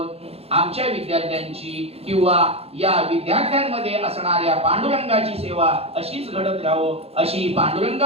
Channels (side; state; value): left; late; 0.29 ms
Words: आमच्या विद्यार्थ्यांची किंवा या विद्यार्थ्यांमध्ये असणाऱ्या पांडुरंगाची सेवा अशीच घडत राहो, अशी